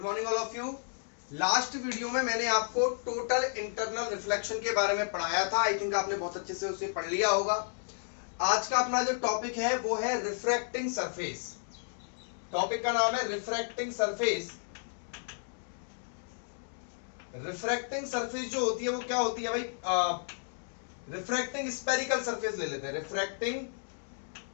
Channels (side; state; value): right; silent; digital silence